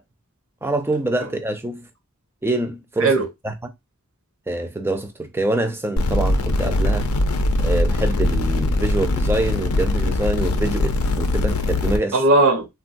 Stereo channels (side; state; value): both; normal; correlation 0.60